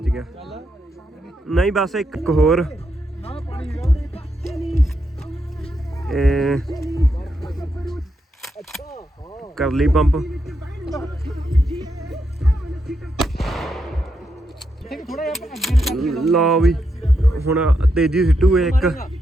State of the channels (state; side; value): normal; both; correlation 0.82